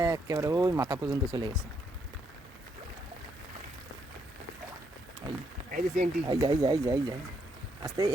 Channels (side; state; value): both; normal; correlation 0.75